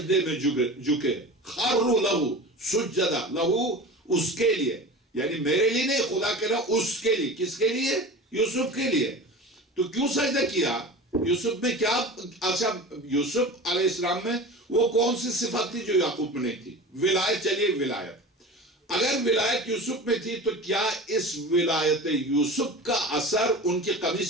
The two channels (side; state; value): both; normal; correlation 0.34